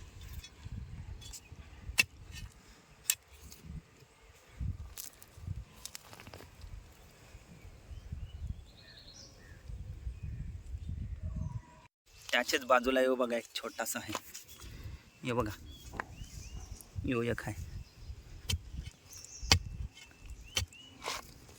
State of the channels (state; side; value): identical; both; correlation 1.00